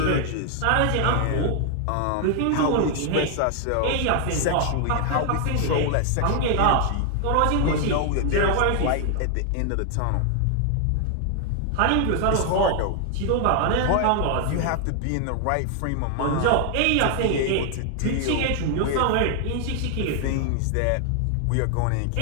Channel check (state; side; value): different; both; correlation 0.00